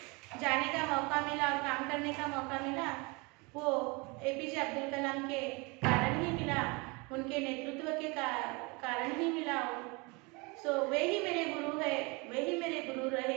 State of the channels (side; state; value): left; quieter; 27.9 dB